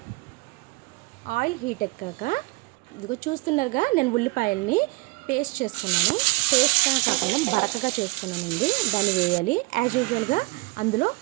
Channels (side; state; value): left; quieter; 24.7 dB